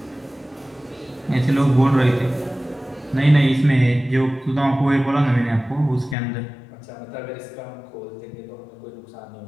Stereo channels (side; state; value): right; drops out; at 6.2 s